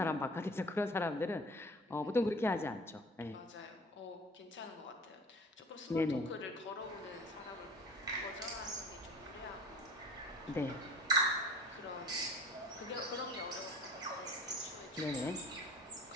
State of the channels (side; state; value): both; normal; correlation 0.43